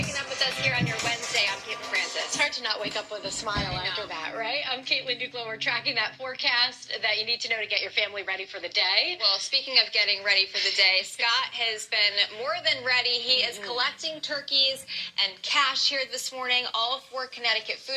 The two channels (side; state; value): both; identical; correlation 1.00